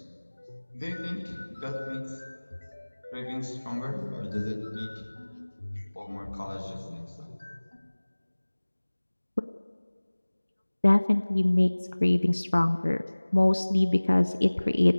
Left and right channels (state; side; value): inverted; both; correlation -1.00